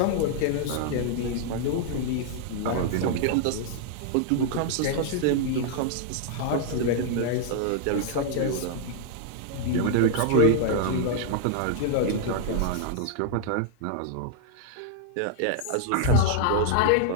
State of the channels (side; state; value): both; different; correlation -0.01